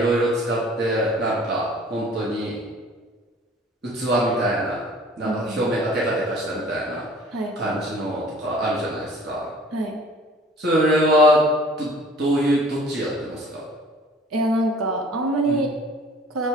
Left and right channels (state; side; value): normal; both; correlation 0.51